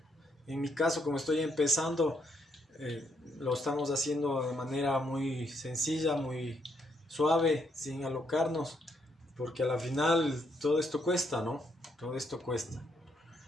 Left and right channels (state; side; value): normal; both; correlation 0.75